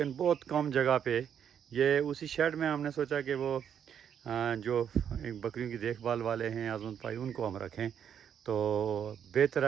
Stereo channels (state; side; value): quieter; left; 8.5 dB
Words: बहुत कम जगह पे ये उसी शेड में हमने सोचा कि वो जो बकरियों की देखभाल वाले हैं आज़मत भाई, उनको हम रखें। तो बेहतर